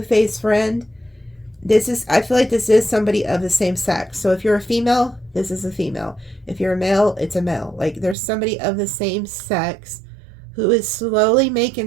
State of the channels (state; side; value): drops out; left; at 8.2 s